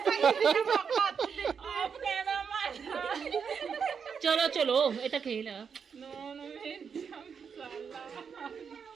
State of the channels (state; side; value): quieter; left; 6.5 dB